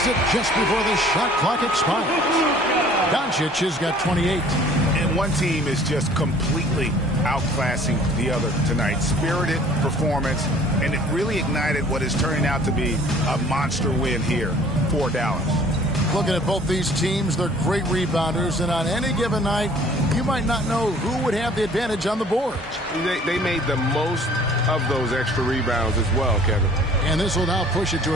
it just before the shot clock expires. Doncic has got 28. And one team is just completely outclassing the other tonight. Spirited performance, and it really ignited what is turning out to be a monster win here for Dallas. Looking at both these teams, they're great rebounders, and on any given night, you might not know who would have the advantage on the board. They made the most of those extra rebounds as well, Kevin. And this will now push it to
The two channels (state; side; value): normal; both; correlation 0.53